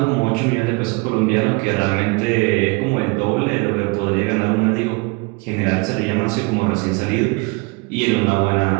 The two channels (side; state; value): left; quieter; 27.7 dB